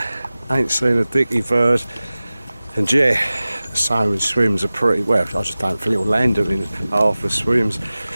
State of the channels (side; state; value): both; inverted; correlation -0.97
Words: Ain't seen a dicky bird, and yeah, salmon swims are pretty well. I just don't think it'll land them in half the swims.